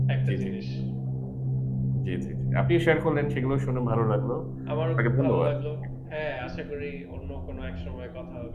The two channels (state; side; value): identical; both; correlation 1.00